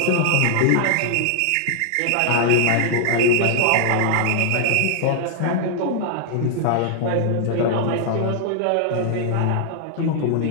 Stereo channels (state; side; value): different; both; correlation -0.01